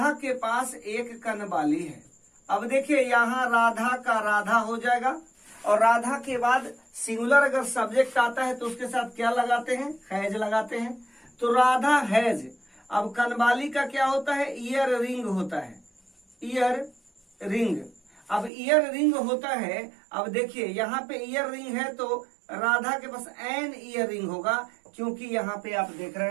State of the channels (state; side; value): drops out; left; at 18.5 s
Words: के पास एक कनबाली है। अब देखिए यहां राधा का राधा हो जाएगा और राधा के बाद सिंगुलर अगर सब्जेक्ट आता है तो उसके साथ क्या लगाते हैं, हैज लगाते हैं। तो राधा हैज। अब कनवाली का क्या होता है, ईयर रिंग होता है, ईयर रिंग। अब ईयर रिंग होता है, अब देखिए यहाँ पे ईयर रिंग है तो राधा के पास एन ईयर रिंग होगा, क्योंकि यहाँ पे आप देख